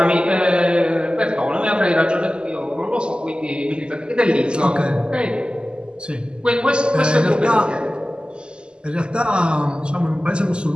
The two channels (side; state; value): left; late; 0.050 ms